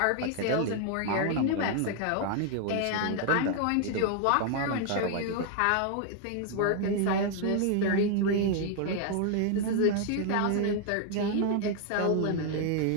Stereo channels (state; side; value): different; both; correlation 0.00